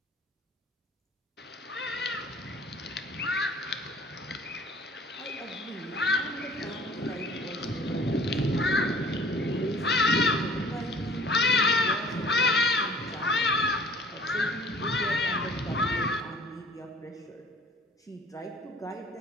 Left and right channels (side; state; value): both; normal; correlation 0.51